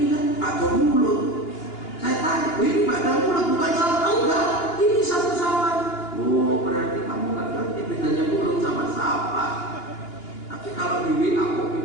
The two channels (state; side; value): late; right; 2.9 ms